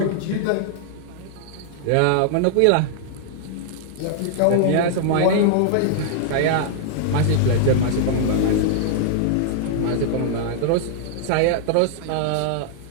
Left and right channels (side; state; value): both; different; correlation -0.01